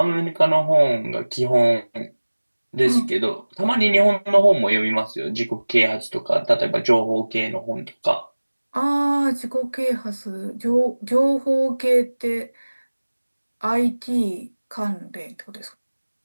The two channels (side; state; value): both; inverted; correlation -1.00